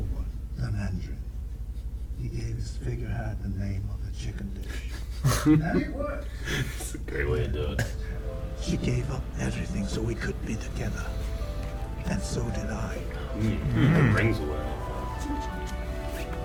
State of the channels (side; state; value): both; identical; correlation 1.00